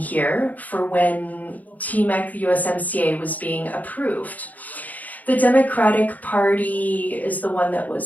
here for when TMEC, the USMCA, was being approved. The Democratic Party is the one that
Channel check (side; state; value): right; late; 0.079 ms